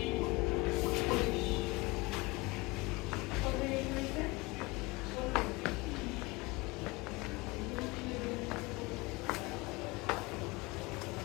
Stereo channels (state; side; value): quieter; right; 24.2 dB